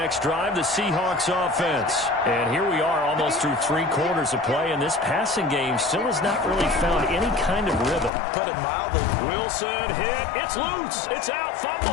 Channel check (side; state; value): right; drops out; at 8.1 s